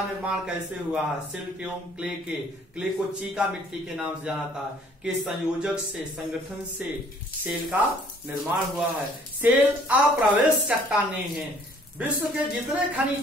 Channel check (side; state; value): both; normal; correlation 0.58